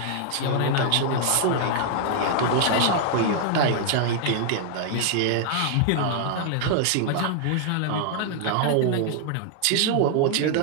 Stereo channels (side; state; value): both; different; correlation -0.01